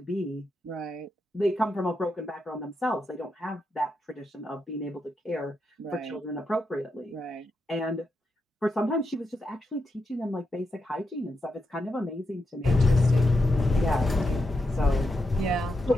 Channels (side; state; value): both; normal; correlation 0.84